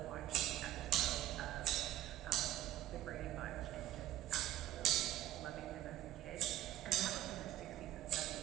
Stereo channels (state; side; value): quieter; left; 14.1 dB